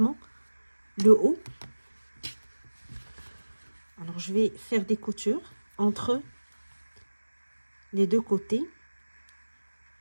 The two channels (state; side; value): inverted; both; correlation -1.00